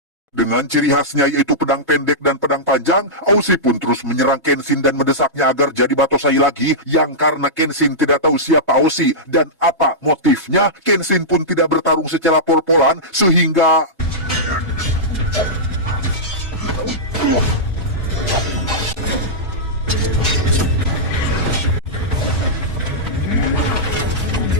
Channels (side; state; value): both; normal; correlation -0.12